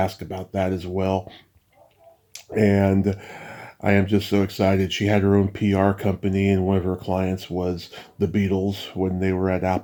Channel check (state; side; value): identical; both; correlation 1.00